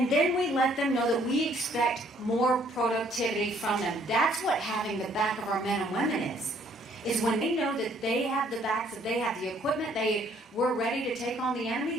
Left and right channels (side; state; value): both; normal; correlation 0.63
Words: then we let them know that we expect more productivity from them. That's what having the back of our men and women is when they know that they have the backs, that they have the equipment, we're ready to take on the